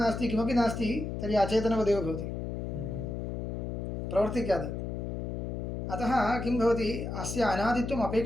नास्ति, किमपि नास्ति, तर्हि अचेतनवदेव भवति, प्रवर्तिकात्. अतः किं भवति? अस्य अनादित्वम्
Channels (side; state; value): left; noise; hum, 4 dB below the sound